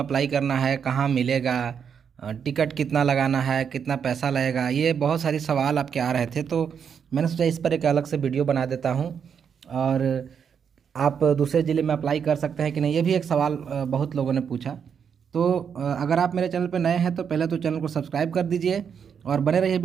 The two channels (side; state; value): left; quieter; 7.2 dB